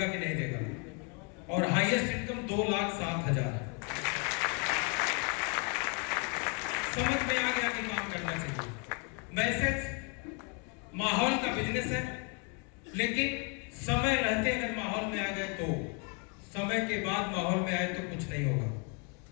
कि नहीं देगा, और हाईएस्ट इनकम 2,07,000। समझ में आ गया कि काम करना चाहिए। मैसेज, माहौल का बिजनेस है, लेकिन समय रहते अगर माहौल में आ गए तो, समय के बाद माहौल में आए तो कुछ नहीं होगा।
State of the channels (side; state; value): right; quieter; 36.2 dB